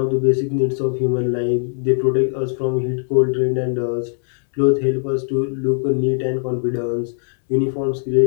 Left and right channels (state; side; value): silent; right; 66 dB below the other